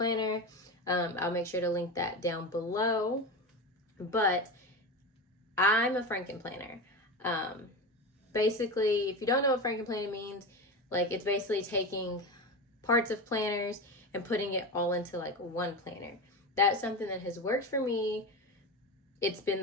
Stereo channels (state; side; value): normal; both; correlation 0.23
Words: I'll make sure to link that down below. But I'm a frankenplanner. Basically, if you don't know what frankenplanner means, it's basically taking parts of planners and putting it all into one planner. That's something that has worked for me. It's